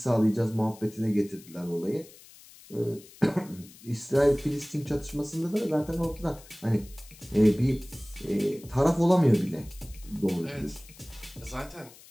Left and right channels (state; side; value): noise; left; hiss, 22 dB below the sound